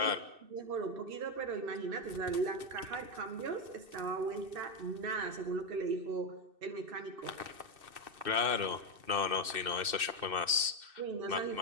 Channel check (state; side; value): late; left; 2.6 ms